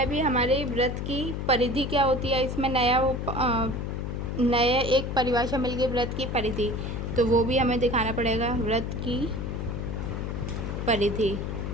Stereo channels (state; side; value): noise; left; hum, 4 dB below the sound